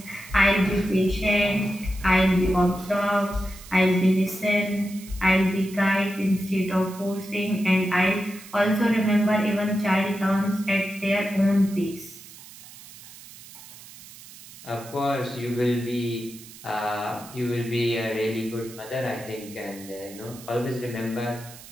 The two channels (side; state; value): right; noise; hiss, 18 dB below the sound